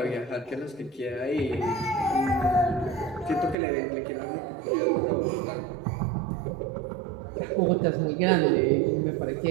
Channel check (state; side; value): drops out; left; at 3.6 s